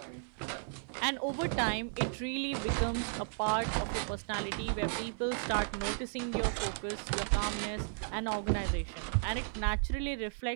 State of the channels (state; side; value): silent; left; 55 dB below the other